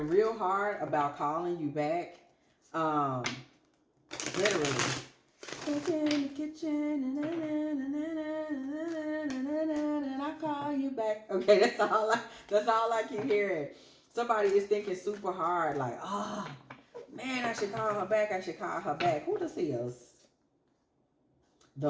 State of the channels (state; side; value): identical; both; correlation 1.00